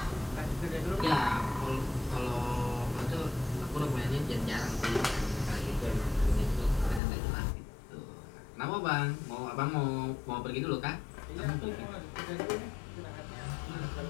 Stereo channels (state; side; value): drops out; right; at 7.0 s